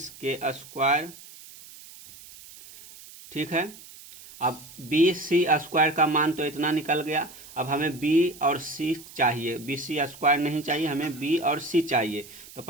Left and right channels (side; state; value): right; noise; hiss, 18 dB below the sound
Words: के स्क्वायर। ठीक है। अब बी सी स्क्वायर का मान तो इतना निकल गया। अब हमें बी और सी चाहिए, बी सी स्क्वायर नहीं चाहिए, हमें बी और सी चाहिए। तो